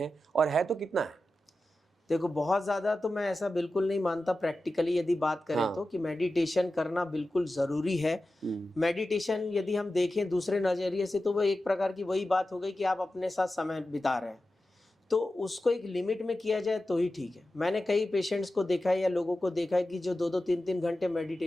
और है तो कितना है? देखो, बहुत ज़्यादा तो मैं ऐसा बिल्कुल नहीं मानता। प्रैक्टिकली यदि बात करें तो कि मेडिटेशन करना बिल्कुल ज़रूरी है। मेडिटेशन यदि हम देखें दूसरे नज़रिए से तो वो एक प्रकार की वही बात हो गई कि आप अपने साथ समय बिता रहे हैं, तो उसको एक लिमिट में किया जाए तो ही ठीक है। मैंने कई पेशेंट्स को देखा है या लोगों को देखा है कि जो 2-2, 3-3 घंटे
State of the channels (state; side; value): normal; both; correlation 0.93